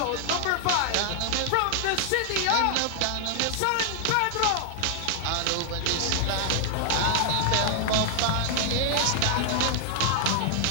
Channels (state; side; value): different; both; correlation -0.01